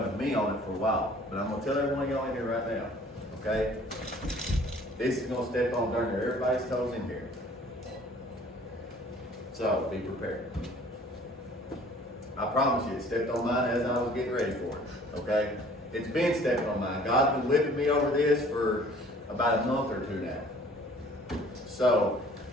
with me on it for a while. But I'm going to tell every one of y'all in here right now, okay? This is going to step on darn near everybody's toes in here. So be prepared. I promise you, it stepped on mine as I was getting ready for it, okay? It's been stepping on mine. God's been whipping me over this for about a month or two now. So,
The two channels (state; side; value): normal; both; correlation 0.53